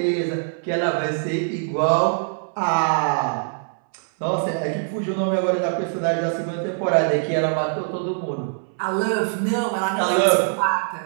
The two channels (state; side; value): silent; left; 61 dB below the other